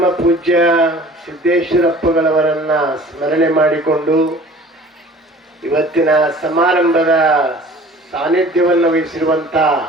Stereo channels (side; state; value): both; normal; correlation 0.47